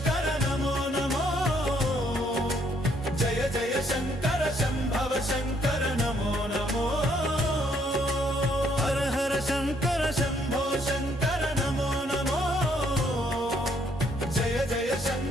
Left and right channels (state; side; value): normal; both; correlation 0.68